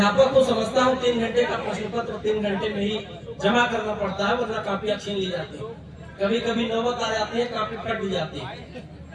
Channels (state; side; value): identical; both; correlation 1.00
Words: को समझता हूँ 3 घंटे का प्रश्न पत्र 3 घंटे में ही जमा करना पड़ता है, वरना कापियां छीन ली जाती है। कभी कभी नौबत आ जाती है, कापी फट भी जाती है।